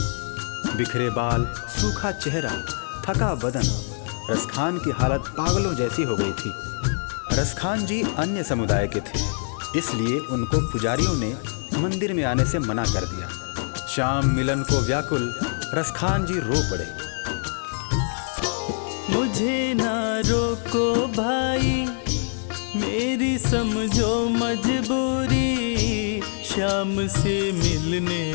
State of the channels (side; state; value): right; silent; digital silence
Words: बिखरे बाल, सूखा चेहरा, थका बदन, रसखान की हालत पागलों जैसी हो गई थी। रसखान जी अन्य समुदाय के थे, इसलिए उनको पुजारियों ने मंदिर में आने से मना कर दिया। श्याम मिलन को व्याकुल रसखान जी रो पड़े। मुझे ना रोको भाई, मेरी समझो मजबूरी। श्याम से मिलने